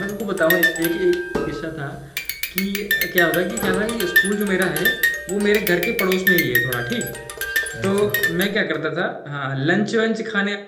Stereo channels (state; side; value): identical; both; correlation 1.00